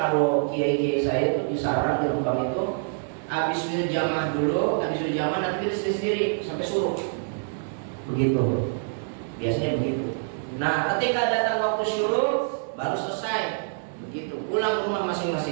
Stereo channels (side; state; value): left; silent; digital silence